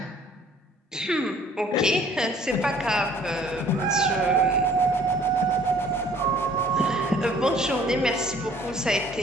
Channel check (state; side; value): normal; both; correlation 0.56